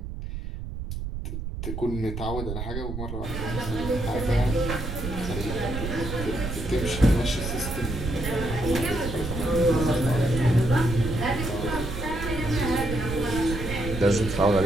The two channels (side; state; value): right; noise; rumble, 6 dB below the sound